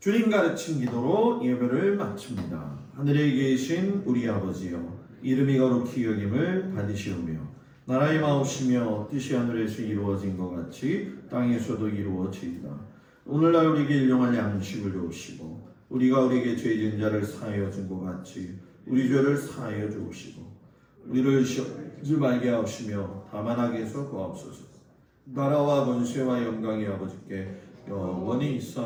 가르친 기도로 예배를 마칩니다. 하늘에 계신 우리 아버지여 이름이 거룩히 여김을 받으시오며 나라의 마옵시며 뜻이 하늘에서 이루어진 것 같이 땅에서도 이루어지이다. 오늘날 우리에게 일용할 양식을 주옵시고 우리가 우리에게 죄진 자를 사하여 준 것 같이 우리 죄를 사하여 주옵시고 우리를 시험하지 말게 하옵시며 다만 악에서 구하옵소서. 나라와 권세와 영광이 아버지께 영원히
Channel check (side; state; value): both; identical; correlation 1.00